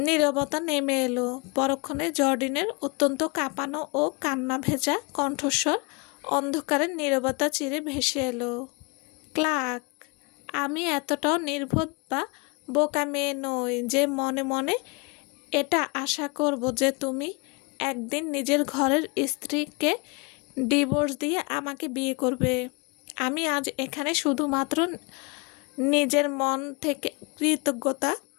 নীরবতা নেমে এলো। পরক্ষণে জর্ডিনের অত্যন্ত কাঁপানো ও কান্না ভেজা কণ্ঠস্বর অন্ধকারের নীরবতা চিরে ভেসে এলো। ক্লার্ক, আমি এতটাও নির্বোধ বা বোকা মেয়ে নই যে মনে মনে এটা আশা করব যে তুমি একদিন নিজের ঘরের স্ত্রীকে ডিভোর্স দিয়ে আমাকে বিয়ে করবে। আমি আজ এখানে শুধুমাত্র নিজের মন থেকে কৃতজ্ঞতা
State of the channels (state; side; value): quieter; right; 30.0 dB